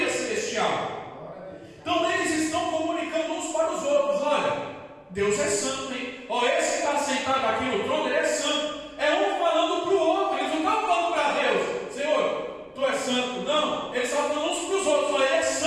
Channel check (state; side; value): identical; both; correlation 1.00